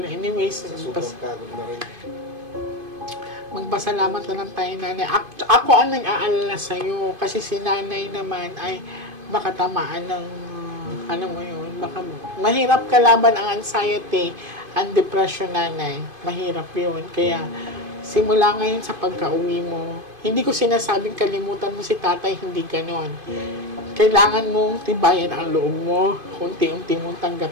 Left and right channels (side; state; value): left; late; 2.5 ms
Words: anyways, Sa sobrang pagod na rin. magpasalamat na lang tayo, nanay. Ako ang nag-aalala sa'yo kasi si nanay naman ay baka tamaan ng, mo yun, baka mahirap kalaban ang anxiety, ang depression, nanay. Mahirap yun. Kaya, simula ngayon sa pagka-uwi mo, hindi ko sinasabing kalimutan mo si tatay, hindi ganon. Kailangan mong tibayan ang loob mo, unti-unti mong